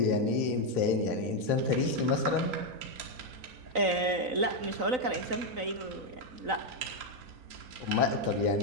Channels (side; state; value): left; late; 3.9 ms